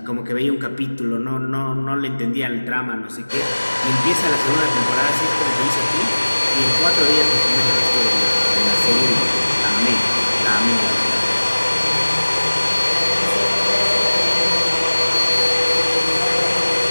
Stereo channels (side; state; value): both; inverted; correlation -1.00